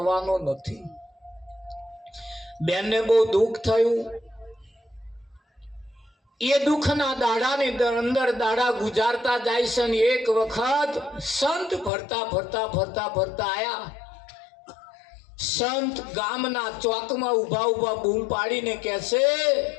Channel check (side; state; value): right; drops out; at 11.9 s